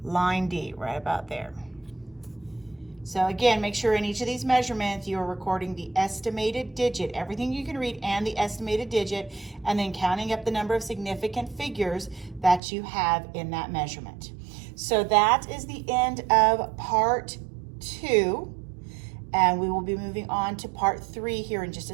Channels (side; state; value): left; drops out; at 12.6 s